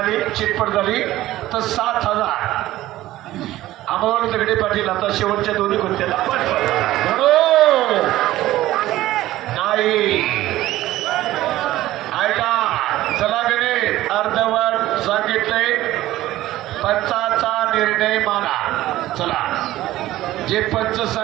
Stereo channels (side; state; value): left; quieter; 15.5 dB